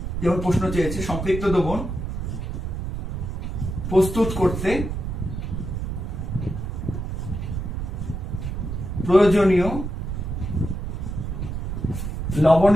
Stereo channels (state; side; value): noise; right; rumble, 4 dB below the sound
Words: যেমন প্রশ্ন চেয়েছে, সম্পৃক্ত দ্রবণ প্রস্তুত করতে প্রয়োজনীয়